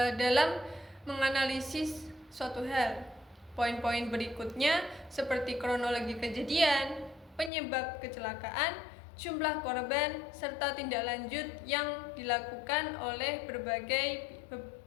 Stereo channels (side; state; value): right; drops out; at 7.5 s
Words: dalam menganalisis suatu hal. Poin-poin berikutnya seperti kronologi kejadian, penyebab kecelakaan, jumlah korban, serta tindak lanjut yang dilakukan oleh